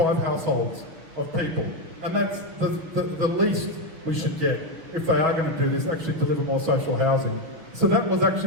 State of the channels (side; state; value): left; late; 6.2 ms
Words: households of people. And that's the least we should get if they are going to do this, actually deliver more social housing. So that was